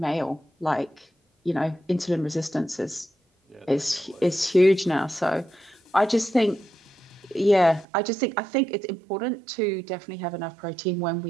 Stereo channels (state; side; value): drops out; left; at 7.9 s